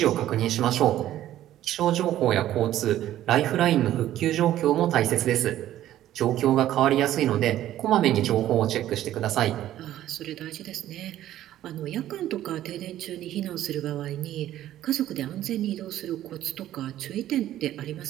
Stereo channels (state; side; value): quieter; left; 12.9 dB